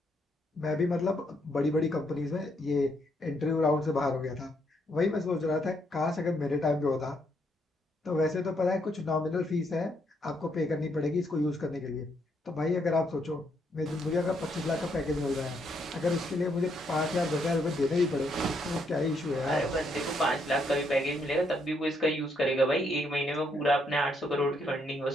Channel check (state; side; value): normal; both; correlation 0.74